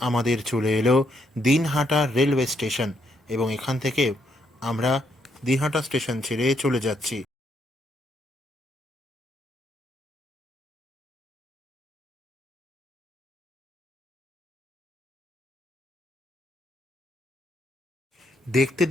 আমাদের চলে এলো দিনহাটা রেলওয়ে স্টেশন, এবং এখান থেকে আমরা দিনহাটা স্টেশন ছেড়ে চলে যাচ্ছি। দেখতে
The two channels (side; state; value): both; normal; correlation 0.75